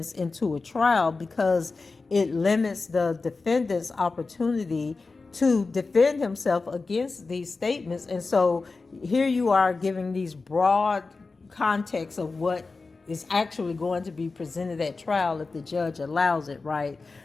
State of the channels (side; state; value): right; quieter; 3.9 dB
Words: into a trial, because it limits the defendant's opportunity to defend himself against these statements. And so here you are giving these broad context of what is actually going to be presented at trial if the judge allows it, right?